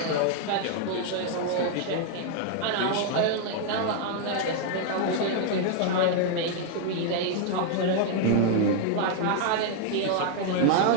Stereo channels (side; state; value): both; different; correlation 0.00